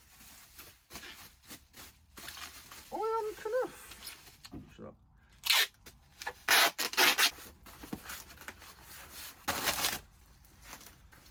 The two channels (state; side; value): identical; both; correlation 1.00